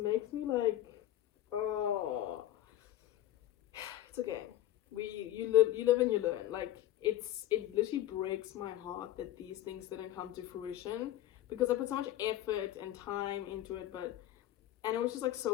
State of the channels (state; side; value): quieter; right; 13.4 dB